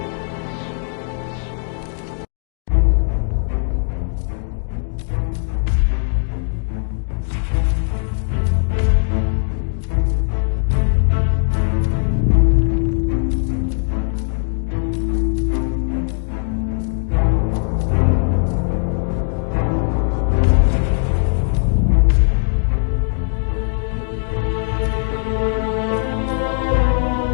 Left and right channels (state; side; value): silent; right; digital silence